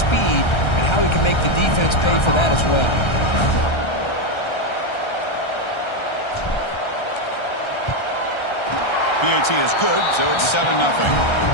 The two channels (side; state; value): right; late; 1.3 ms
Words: and how he can make the defense pay for that as well. PAT is good, so it's 7-0.